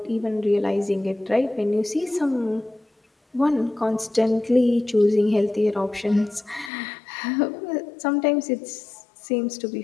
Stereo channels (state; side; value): drops out; right; at 6.7 s